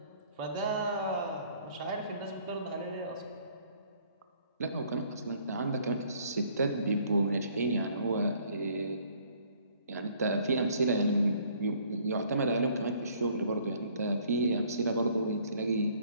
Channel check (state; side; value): inverted; both; correlation -0.60